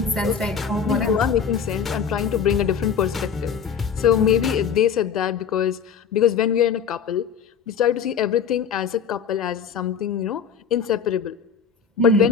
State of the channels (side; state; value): right; quieter; 6.9 dB